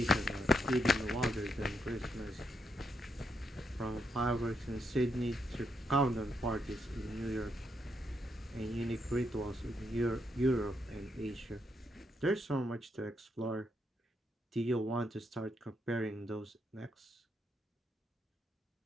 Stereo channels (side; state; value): both; normal; correlation 0.79